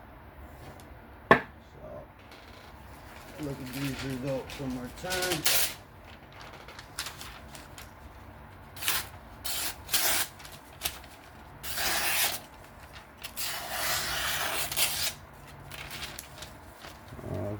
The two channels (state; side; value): identical; both; correlation 1.00